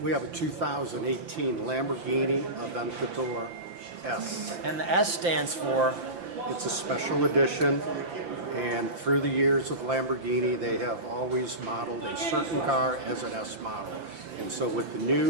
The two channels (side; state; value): left; late; 5.8 ms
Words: We have a 2018 Lamborghini Aventador S. And the S stands for? It's a special edition, and through the years of Lamborghini, they have always modeled a certain car as an S model. And so with the